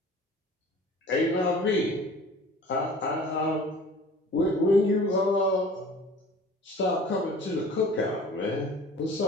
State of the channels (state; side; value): normal; both; correlation 0.45